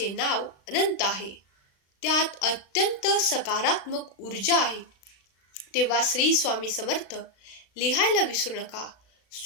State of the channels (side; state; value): right; late; 36 ms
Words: नाव अनंत आहे, त्यात अत्यंत सकारात्मक ऊर्जा आहे. तेव्हा श्री स्वामी समर्थ लिहायला विसरू नका.